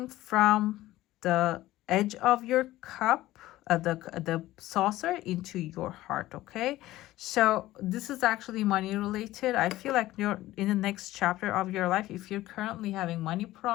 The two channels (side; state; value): right; quieter; 16.1 dB